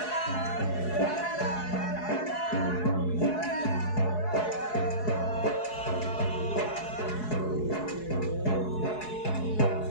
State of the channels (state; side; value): late; right; 4.7 ms